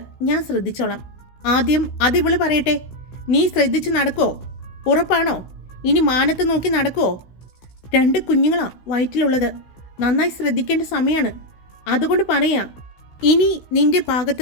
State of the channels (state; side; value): late; right; 16 ms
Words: ഞാൻ ശ്രദ്ധിച്ചോളാം. ആദ്യം അതിവള് പറയട്ടെ, നീ ശ്രദ്ധിച്ച് നടക്കുമോ? ഉറപ്പാണോ? ഇനി മാനത്ത് നോക്കി നടക്കുമോ? 2 കുഞ്ഞുങ്ങളാ വയറ്റിലുള്ളത്. നന്നായി ശ്രദ്ധിക്കേണ്ട സമയമാണ്. അതുകൊണ്ട് പറയാ, ഇനി നിന്റെ